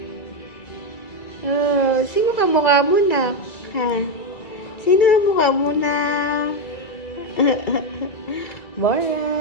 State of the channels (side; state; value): right; late; 2.4 ms